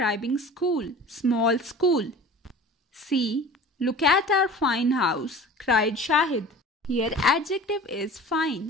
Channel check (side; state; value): both; normal; correlation 0.40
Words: school, small school. C. Look at our fine house, cried Shahid. Here adjective is